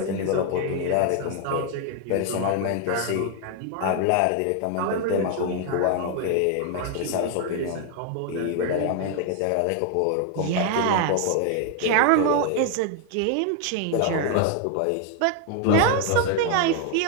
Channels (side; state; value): both; different; correlation 0.00